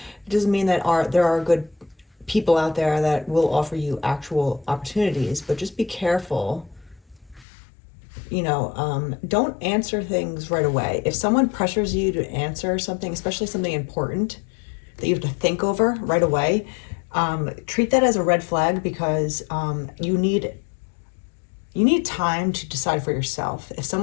It doesn't mean that there are good people out there that will offer you actual opportunities, but just be careful. Don't answer things right away. If someone pressures you to answer something, especially something important that you have to think over right away, treat that as a red flag, because you need time to decide for yourself. If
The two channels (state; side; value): drops out; right; at 7.5 s